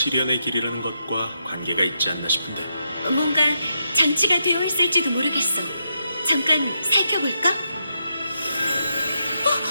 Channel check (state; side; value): inverted; both; correlation -0.82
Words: 길이라는 것과 관계가 있지 않나 싶은데. 뭔가 장치가 되어 있을지도 모르겠어. 잠깐 살펴볼까?